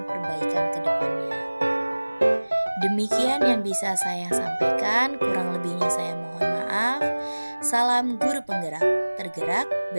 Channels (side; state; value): both; inverted; correlation -1.00